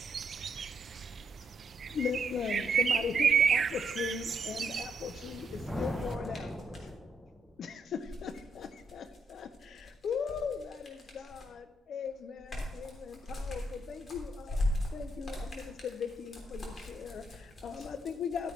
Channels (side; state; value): both; normal; correlation 0.76